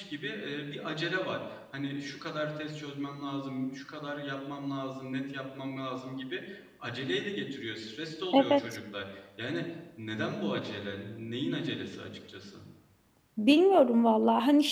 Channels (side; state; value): both; identical; correlation 1.00